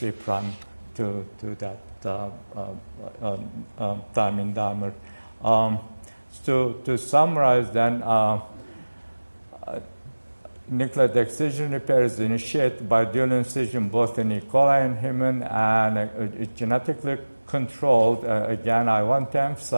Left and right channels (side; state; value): both; inverted; correlation -1.00